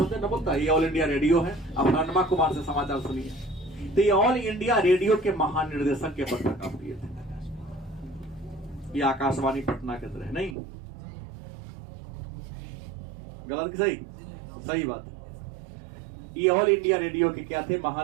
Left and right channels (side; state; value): left; drops out; at 10.6 s